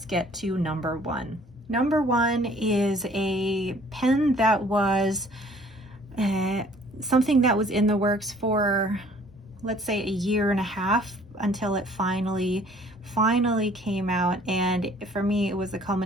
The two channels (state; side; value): normal; both; correlation 0.56